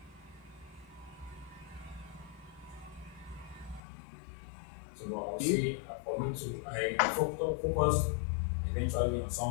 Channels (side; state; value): right; drops out; at 3.8 s